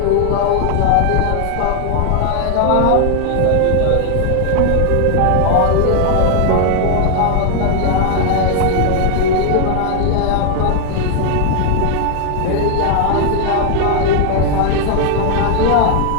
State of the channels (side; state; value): both; different; correlation 0.00